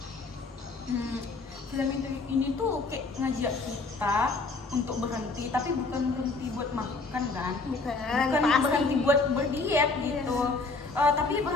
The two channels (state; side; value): quieter; right; 3.8 dB